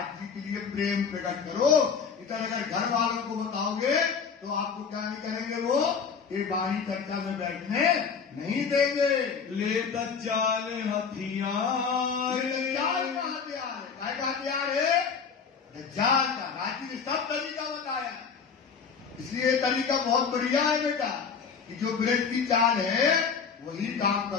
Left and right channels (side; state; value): right; quieter; 6.1 dB